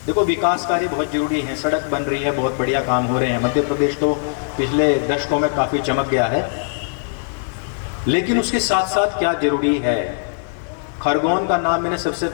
देखो, विकास कार्य बहुत जरूरी है, सड़क बन रही है, बहुत बढ़िया काम हो रहे हैं, मध्य प्रदेश तो पिछले दशकों में काफी चमक गया है, लेकिन उसके साथ साथ क्या जरूरी है। खरगोन का नाम मैंने सबसे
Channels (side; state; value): right; silent; digital silence